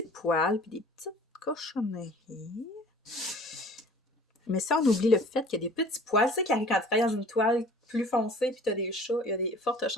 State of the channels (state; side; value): normal; both; correlation 0.48